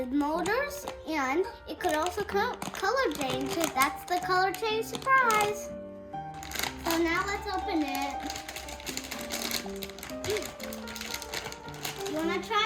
motors, and it could also color change. That's the color change surprise. So now let's open it. You wanna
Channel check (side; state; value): both; identical; correlation 1.00